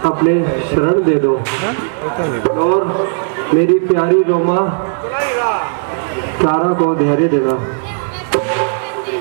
अपने शरण दे दो और मेरी प्यारी रोमा क्लारा को धैर्य देना।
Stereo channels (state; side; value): silent; left; digital silence